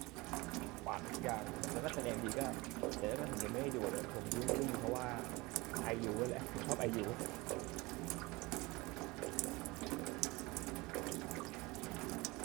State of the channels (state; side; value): quieter; left; 23.3 dB